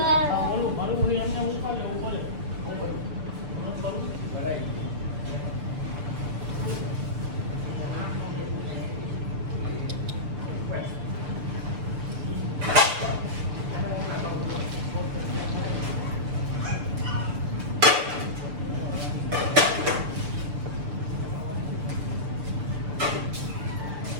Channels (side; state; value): left; late; 6.8 ms